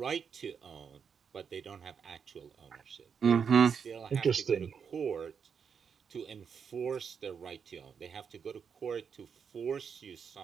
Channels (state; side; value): quieter; left; 6.7 dB